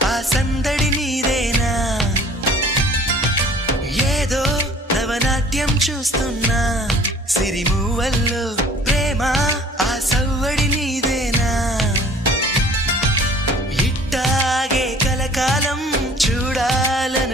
ఆ సందడి నీదేనా ఏదో నవనాట్యం చూస్తున్నా సిరిమూవల్లో ప్రేమ ఆ సవ్వడి నీదేనా ఇట్టాగే కలకాలం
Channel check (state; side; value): normal; both; correlation 0.51